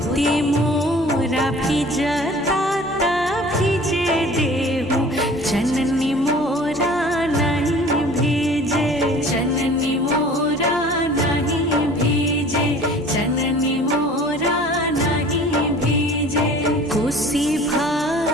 मोती मोरा भिजता ता भिजे देहु, जननी मोरा नहीं भीजे, जननी मोरा नहीं भीजे, जननी मोरा नहीं भीजे। कोसी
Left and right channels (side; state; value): both; normal; correlation 0.46